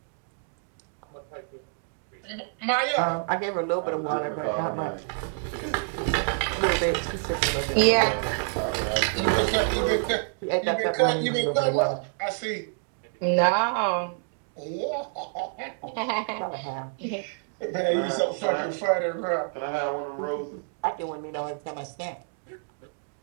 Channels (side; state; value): left; silent; 60 dB below the other